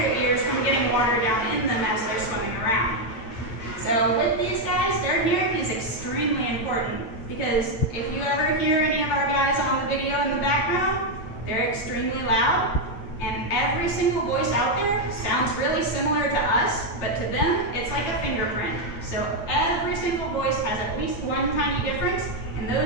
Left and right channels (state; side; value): late; right; 8.9 ms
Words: ears from getting water down in them as they're swimming around. So with these guys, their hearing is extremely important, because if you ever hear any of our guys on the video in the background, they're extremely loud, and every single voice out there sounds really similar to us, but to them, it's like a fingerprint. So every single voice has at least one tiny difference, and